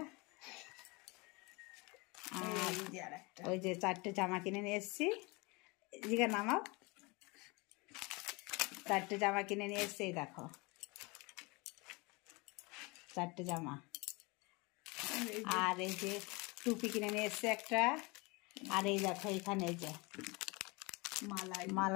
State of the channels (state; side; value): quieter; right; 26.6 dB